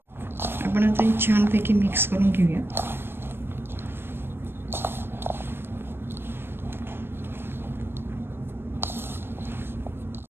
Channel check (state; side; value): late; left; 0.11 ms